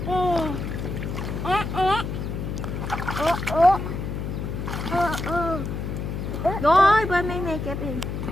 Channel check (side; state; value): left; noise; hum, 4 dB below the sound